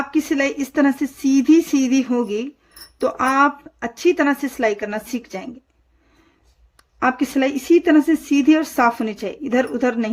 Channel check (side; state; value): both; identical; correlation 1.00